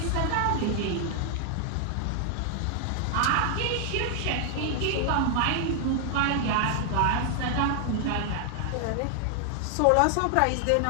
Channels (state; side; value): different; both; correlation 0.00